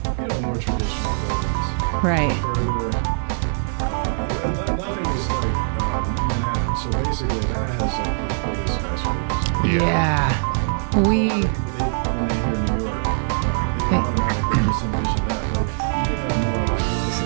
more traditional buildings. Right. But further, nothing is like Manhattan. So basically that has like the biggest skyscrapers. So a lot of people, when they hear New York, they automatically just envision that. But you do have more like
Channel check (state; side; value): silent; left; 58 dB below the other